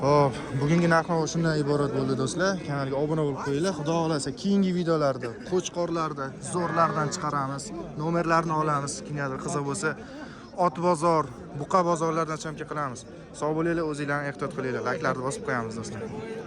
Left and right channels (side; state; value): both; identical; correlation 1.00